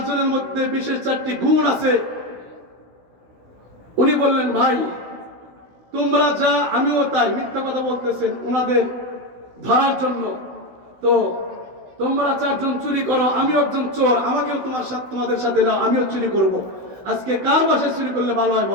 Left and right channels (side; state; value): left; late; 16 ms